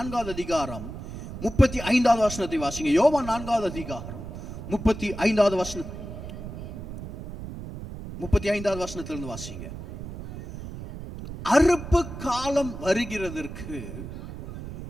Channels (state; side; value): noise; right; rumble, 10 dB below the sound